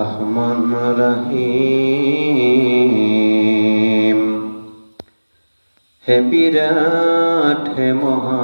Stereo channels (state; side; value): inverted; both; correlation -1.00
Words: রহিম, হে বিরাট হে